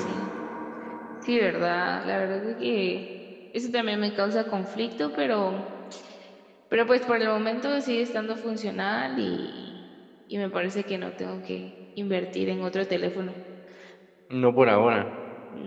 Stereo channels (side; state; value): both; identical; correlation 1.00